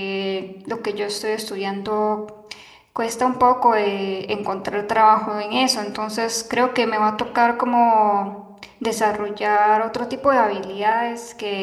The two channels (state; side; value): identical; both; correlation 1.00